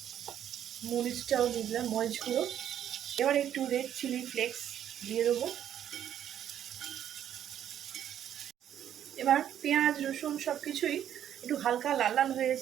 মরিচটাও দিয়ে দিলাম, মরিচ গুঁড়ো। এবার একটু রেড চিলি ফ্লেক্স দিয়ে দেবো। এবার পেঁয়াজ রসুন সব কিছুই একটু হালকা লাল লাল হয়ে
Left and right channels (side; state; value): left; quieter; 10.3 dB